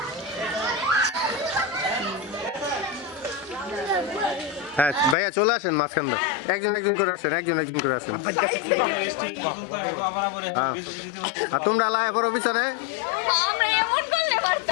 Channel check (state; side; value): drops out; right; at 5.2 s